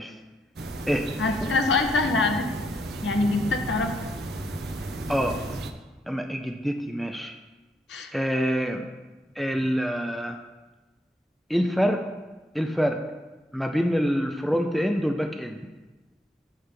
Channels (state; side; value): normal; both; correlation 0.77